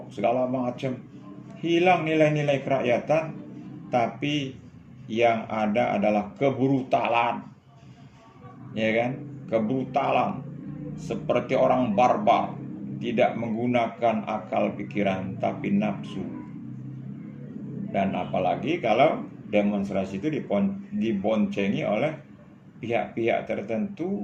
segala macam. Hilang nilai-nilai kerakyatan, tapi yang ada adalah kebrutalan. Ya kan? Kebrutalan seperti orang barbar, tidak menggunakan akal pikiran tapi nafsu. Dan apalagi kalau demonstrasi itu diboncengi oleh pihak-pihak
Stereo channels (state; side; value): identical; both; correlation 1.00